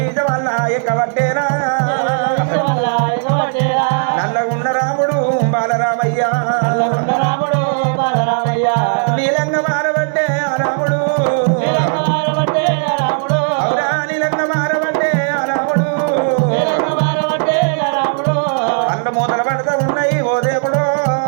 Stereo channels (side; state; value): left; silent; 69 dB below the other